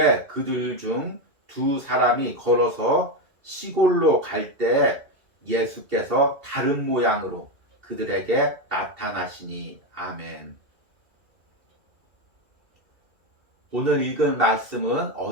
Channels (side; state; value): left; late; 2.7 ms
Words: 그들 중 두 사람이 걸어서 시골로 갈 때 예수께서 다른 모양으로 그들에게 나타나시니. 아멘. 오늘 읽은 말씀은